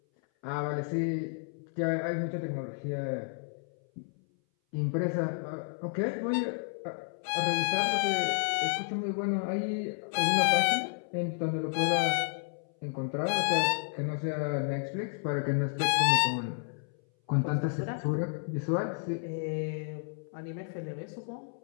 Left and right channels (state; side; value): silent; right; 57 dB below the other